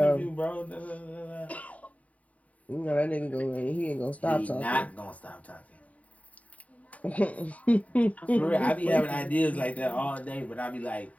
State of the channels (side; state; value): right; late; 0.069 ms